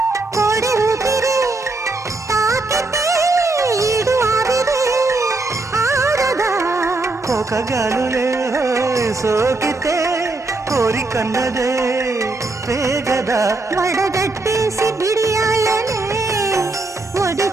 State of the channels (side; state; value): left; quieter; 3.2 dB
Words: కోడి ఊపిరి తాకితే ఈడు ఆవిరి ఆరదా కోకగాలులే సోకితే కోరికన్నదే పేగదా వడగట్టేసి బిడియాలనే ఒడి